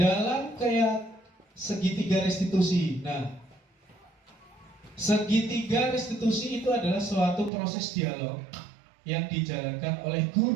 kayak segitiga restitusi. Nah, segitiga restitusi itu adalah suatu proses dialog yang dijalankan oleh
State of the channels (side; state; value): left; drops out; at 7.5 s